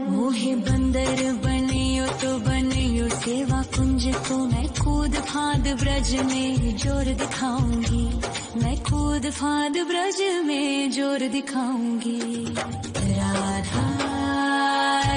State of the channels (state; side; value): identical; both; correlation 1.00